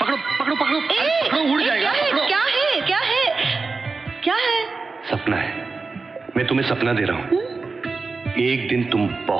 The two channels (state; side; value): quieter; left; 4.2 dB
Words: पकड़ो पकड़ो, पकड़ो, उड़ जाएगा। क्या है? सपना है। मैं तुम्हें सपना दे रहा हूँ। एक दिन तुम